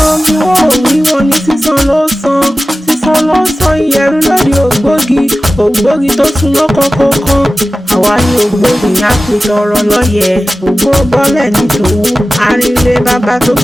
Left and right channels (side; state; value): both; normal; correlation 0.96